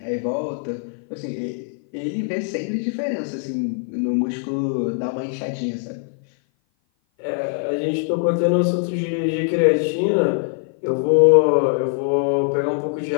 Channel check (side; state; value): right; silent; 56 dB below the other